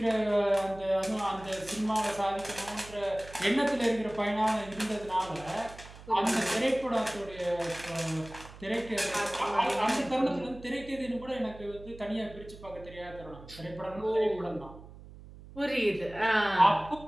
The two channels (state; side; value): noise; right; hum, 17 dB below the sound